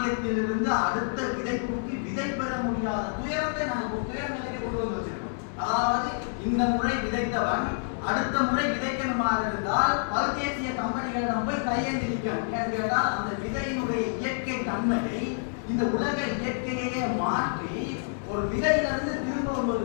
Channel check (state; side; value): silent; right; digital silence